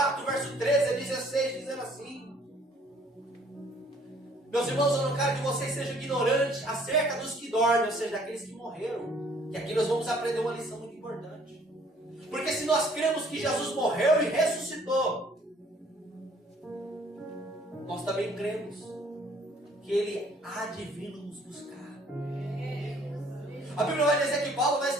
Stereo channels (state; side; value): normal; both; correlation 0.59